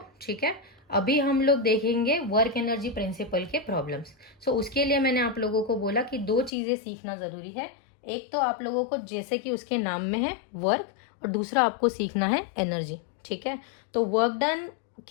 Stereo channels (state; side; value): drops out; right; at 6.5 s